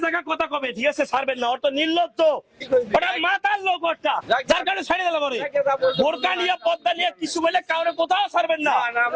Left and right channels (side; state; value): both; identical; correlation 1.00